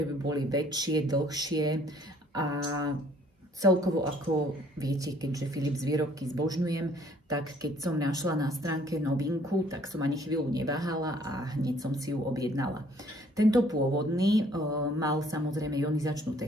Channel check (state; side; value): normal; both; correlation 0.60